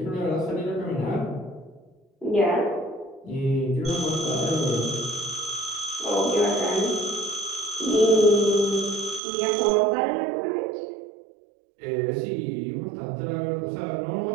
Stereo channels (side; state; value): left; drops out; at 9.2 s